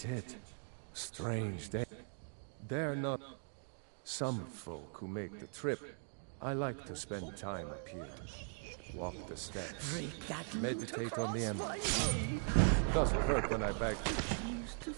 Strange day. They're not some folk who make the trip. I like to spend time up here. Walk the steps. Meditate on the emerald. Doesn't hurt when I beg. Used to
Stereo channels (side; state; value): left; silent; 51 dB below the other